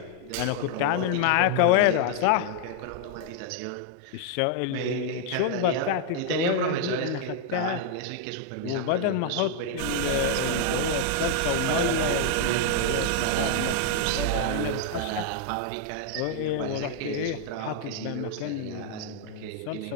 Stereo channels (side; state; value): both; different; correlation 0.00